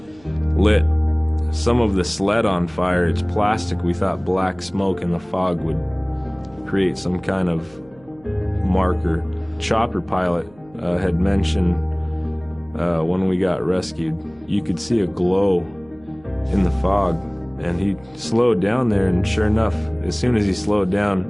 lit some of the sled on fire. It's plastic. We thought black smoke in the fog would create some kind of marker. Chopper pilot had mentioned when we got rescued, you could see a glow in the fog. And he slowed down there, and sure enough, as soon as he slowed down,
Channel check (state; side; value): noise; right; hum, 27 dB below the sound